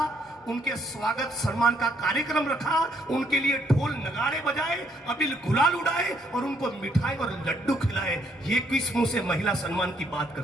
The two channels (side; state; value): both; normal; correlation 0.69